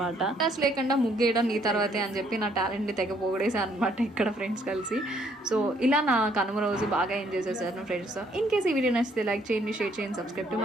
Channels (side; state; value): both; normal; correlation 0.67